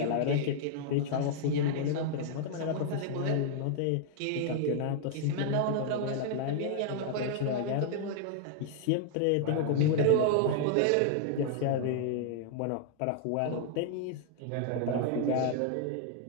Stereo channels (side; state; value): both; different; correlation 0.00